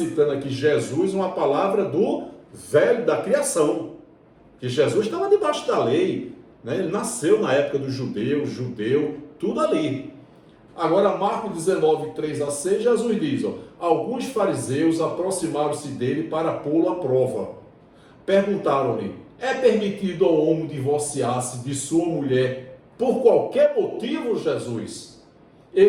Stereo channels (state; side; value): identical; both; correlation 1.00